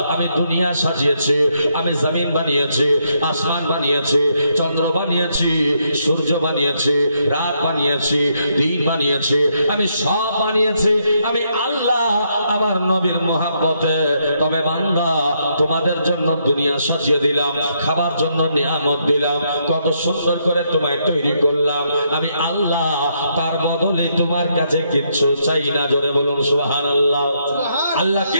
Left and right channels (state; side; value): inverted; both; correlation -0.76